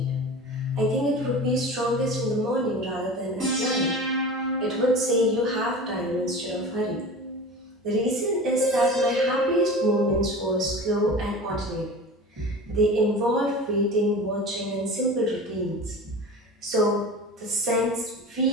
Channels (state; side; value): normal; both; correlation 0.34